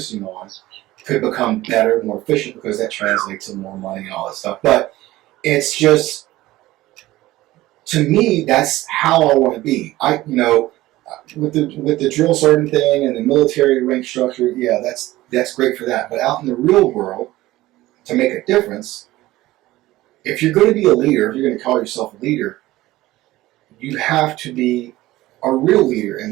on could become better, more efficient, because that translates to more money and all that stuff. But it's just, to me, that's how I want to be. With the drill sergeant thing and the military rank structure, yeah, that's great for that. But out in the real world, to make a difference, if you're going to be a leader, if you're going to call yourself a leader, you have to be a real leader.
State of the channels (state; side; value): quieter; left; 17.0 dB